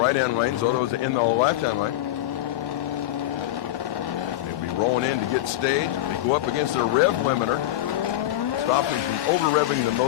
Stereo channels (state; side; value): quieter; right; 14.5 dB